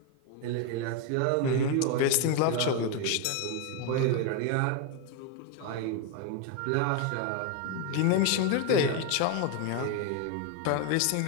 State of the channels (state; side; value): different; both; correlation 0.01